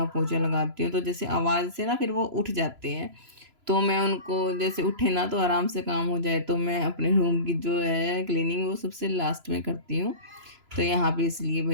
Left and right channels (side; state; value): left; late; 3.0 ms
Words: पोछा लगाती हूँ, तो जैसे आवाज़ से ना फिर वो उठ जाते हैं। तो मैं उनको जैसे उठे ना तो आराम से काम हो जाए, तो मैं अपने रूम की जो है क्लीनिंग वो सबसे लास्ट में करती हूँ। तो यहाँ पे इसलिए